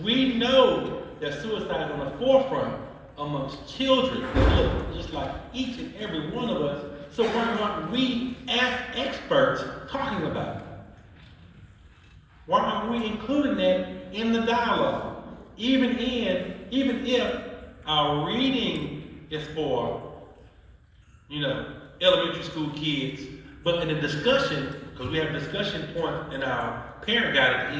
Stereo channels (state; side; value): identical; both; correlation 1.00